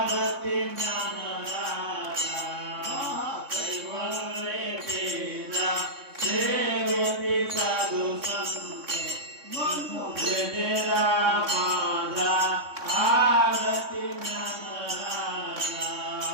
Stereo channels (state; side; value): late; left; 3.6 ms